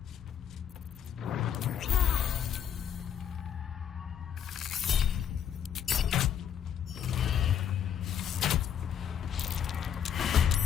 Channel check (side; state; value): right; quieter; 9.1 dB